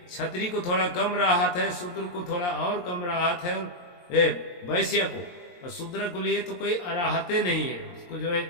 क्षत्रिय को थोड़ा कम राहत है, शूद्र को थोड़ा और कम राहत है, वैश्य को और शूद्र को लिए तो कोई अराहते नहीं है, उसको जो है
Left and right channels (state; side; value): late; right; 23 ms